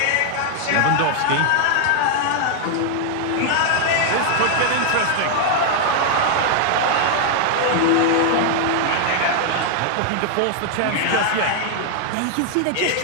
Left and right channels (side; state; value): both; different; correlation 0.00